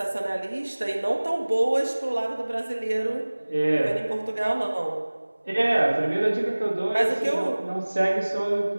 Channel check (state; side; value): inverted; both; correlation -1.00